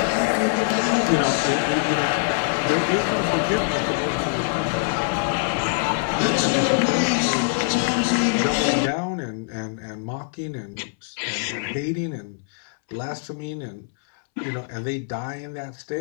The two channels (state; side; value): silent; right; 63 dB below the other